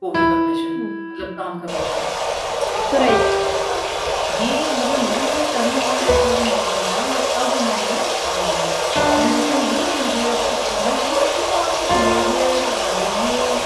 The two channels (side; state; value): both; identical; correlation 1.00